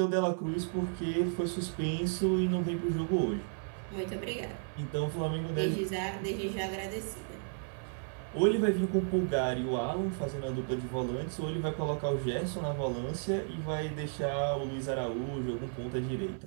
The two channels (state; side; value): silent; left; 55 dB below the other